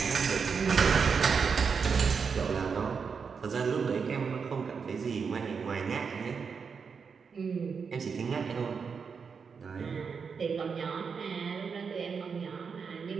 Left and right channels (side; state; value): left; quieter; 5.8 dB